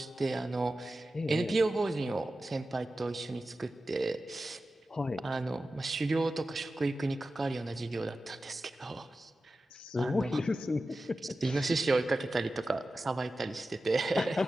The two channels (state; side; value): normal; both; correlation 0.93